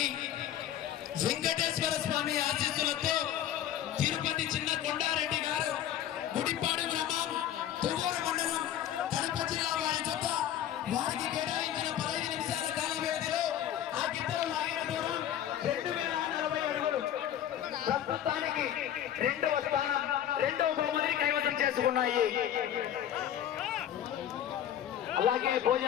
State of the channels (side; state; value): right; quieter; 10.9 dB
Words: వెంకటేశ్వర స్వామి ఆశీస్సులతో తిరుపతి చిన్న కొండారెడ్డి గారు గుడిపాడు గ్రామం తువ్వూరు మండలం కడప జిల్లా వారి జత వారికి కేటాయించిన 15 నిమిషాల కాల వ్యవధిలో ఆ గిద్దలు లాగిన దూరం 2040 అడుగులు. ప్రస్తుతానికి రెండవ స్థానం రెండవ బహుమతిని కైవసం చేసుకున్నాయి. అలాగే